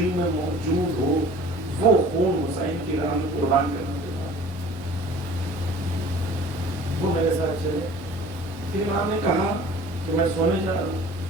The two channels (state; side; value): normal; both; correlation 0.46